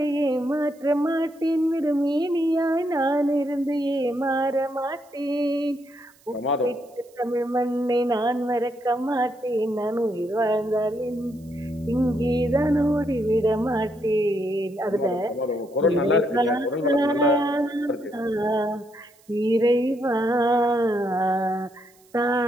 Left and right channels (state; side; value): noise; right; hiss, 30 dB below the sound